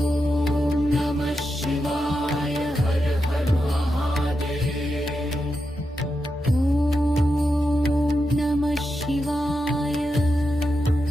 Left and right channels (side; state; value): both; normal; correlation 0.87